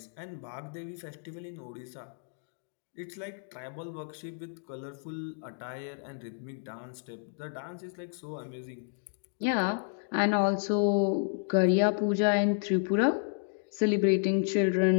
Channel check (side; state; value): right; silent; digital silence